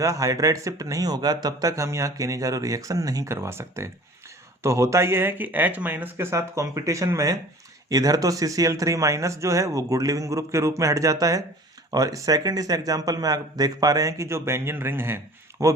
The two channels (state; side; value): normal; both; correlation 0.45